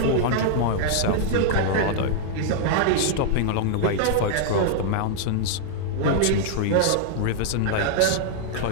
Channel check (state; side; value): different; both; correlation -0.01